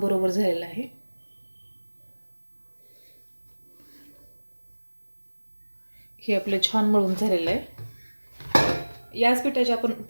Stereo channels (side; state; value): both; inverted; correlation -1.00